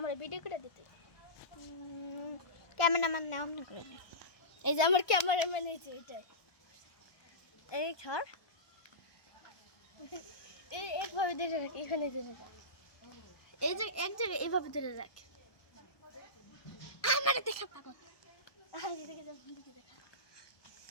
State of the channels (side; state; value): right; late; 1.2 ms